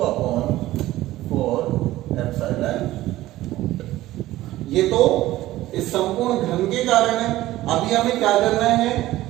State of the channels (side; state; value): left; quieter; 16.0 dB